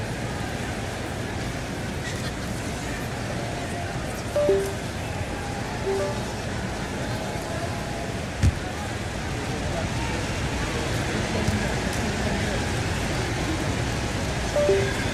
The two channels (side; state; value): both; identical; correlation 1.00